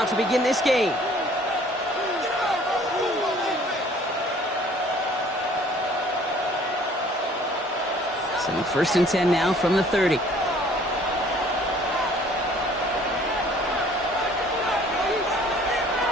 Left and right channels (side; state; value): both; normal; correlation 0.55